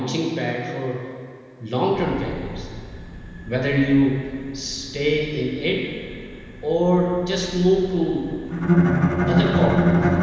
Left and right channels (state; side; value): identical; both; correlation 1.00